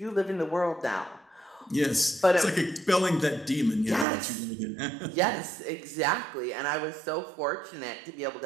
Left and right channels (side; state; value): left; drops out; at 4.0 s